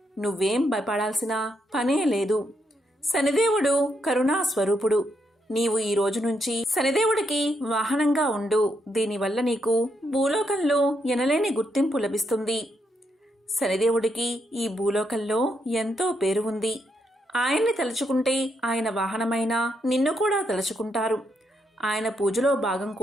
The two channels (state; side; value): normal; both; correlation 0.79